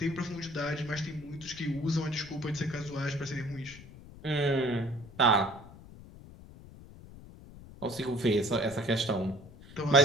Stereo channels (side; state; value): left; noise; rumble, 18 dB below the sound